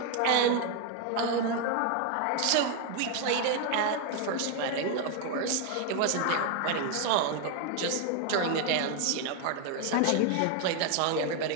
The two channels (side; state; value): both; different; correlation 0.01